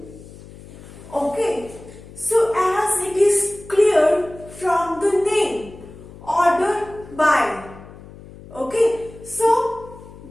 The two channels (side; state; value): left; noise; hum, 18 dB below the sound